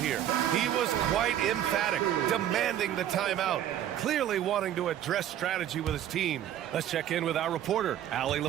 He was quite emphatic, demanding the timeout, clearly wanting to address strategy with his team. Let's check in with our reporter, Allie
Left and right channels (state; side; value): quieter; left; 11.3 dB